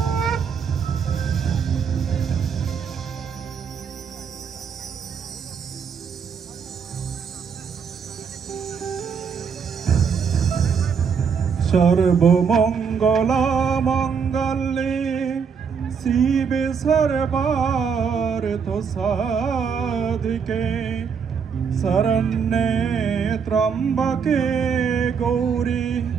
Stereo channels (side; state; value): left; quieter; 6.4 dB